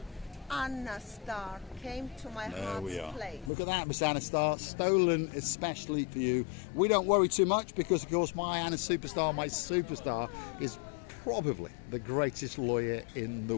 Anna Star came to my There we are. heart's place. Look at that, Miss Anna Star, stolen especially for you. We don't worry too much because, of course, my Anna Superstar, my superstar, is probably the greatest lawyer in the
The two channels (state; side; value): drops out; right; at 3.5 s